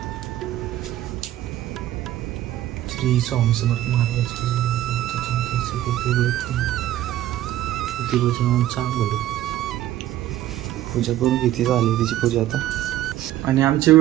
श्री स्वामी समर्थ महाराज चांगलं पूजा करून घेतली झाली तिची पूजा आता. आणि आमचे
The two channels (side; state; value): left; quieter; 13.6 dB